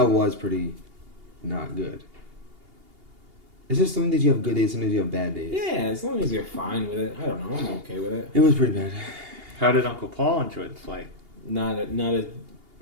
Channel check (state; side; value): late; left; 2.8 ms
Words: was pretty not good. It's just some days you have good days, some days you have bad days. Yeah, as long as you're fine with it. I don't know. I'm okay with it. It was pretty bad. How did Uncle Paul enjoy the flight? Not